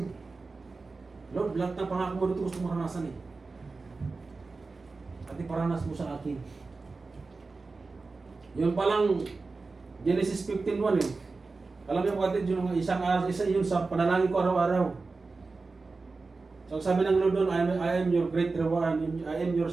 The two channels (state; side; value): quieter; left; 3.9 dB